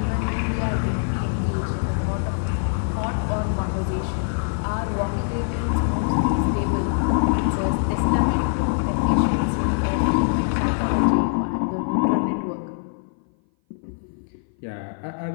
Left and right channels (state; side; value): silent; right; 58 dB below the other